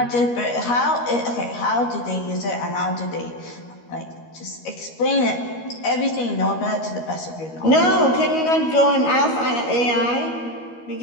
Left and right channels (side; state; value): right; late; 13 ms